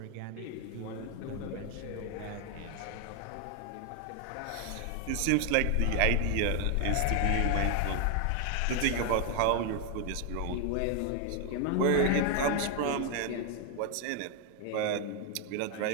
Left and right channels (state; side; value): different; both; correlation 0.01